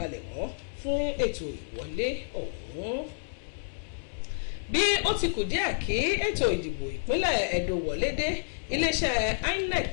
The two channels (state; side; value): silent; right; digital silence